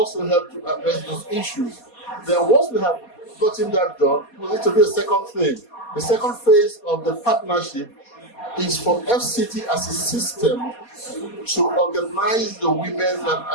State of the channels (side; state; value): right; late; 4.2 ms